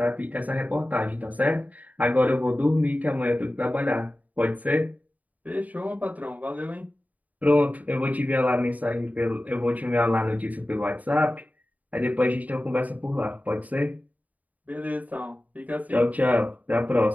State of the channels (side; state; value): left; late; 0.074 ms